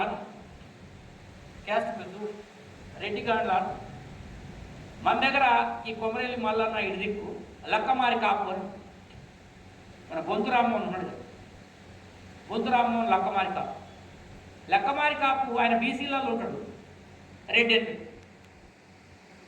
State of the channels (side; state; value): both; identical; correlation 1.00